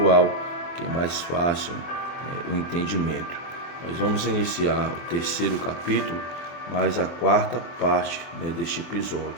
que é mais fácil o entendimento. Nós vamos iniciar o terceiro capítulo, mas a quarta parte deste episódio,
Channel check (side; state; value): right; late; 24 ms